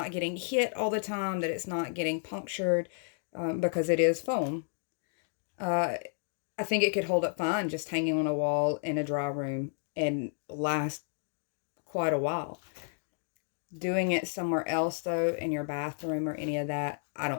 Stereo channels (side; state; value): right; silent; digital silence